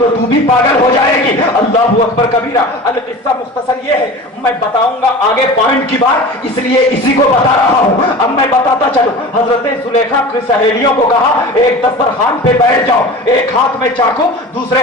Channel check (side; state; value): both; normal; correlation 0.35